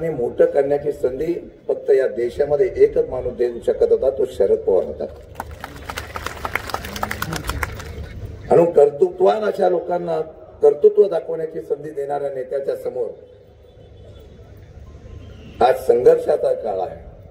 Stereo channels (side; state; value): both; identical; correlation 1.00